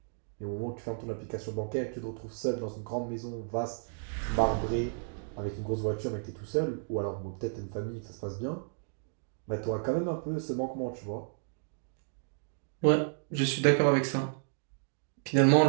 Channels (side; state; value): left; silent; digital silence